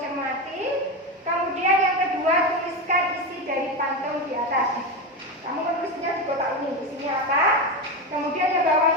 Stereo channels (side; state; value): both; normal; correlation 0.16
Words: cermati. Kemudian yang kedua tuliskan isi dari pantun di atas. Kamu menulisnya di kotak ini. Isinya apa? Kemudian yang